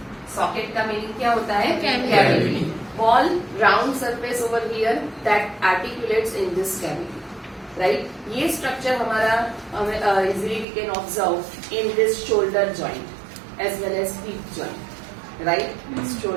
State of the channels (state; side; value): drops out; left; at 10.7 s